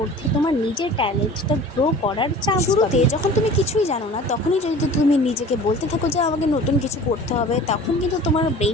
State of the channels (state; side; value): normal; both; correlation 0.42